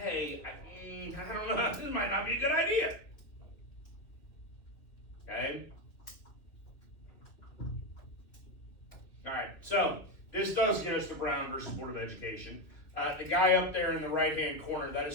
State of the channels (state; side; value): late; right; 2.7 ms